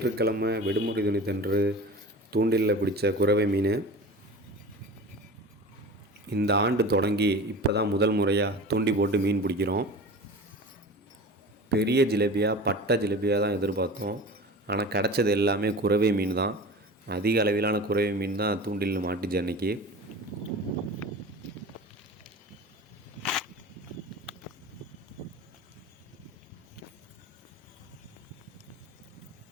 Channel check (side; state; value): both; normal; correlation 0.35